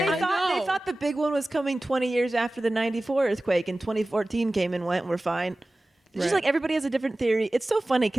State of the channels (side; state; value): both; normal; correlation 0.97